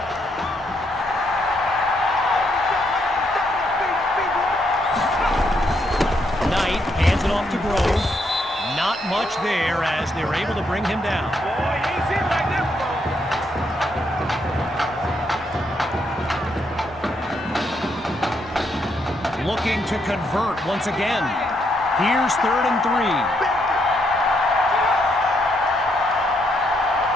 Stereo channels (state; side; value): normal; both; correlation 0.76